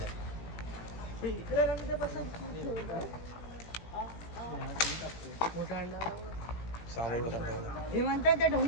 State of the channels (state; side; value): late; right; 17 ms